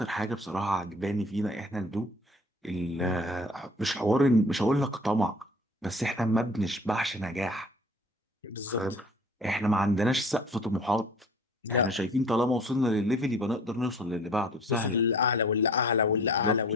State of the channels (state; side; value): normal; both; correlation 0.48